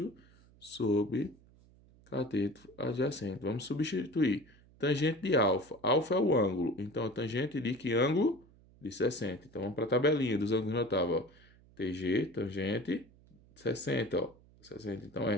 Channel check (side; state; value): right; noise; hum, 27 dB below the sound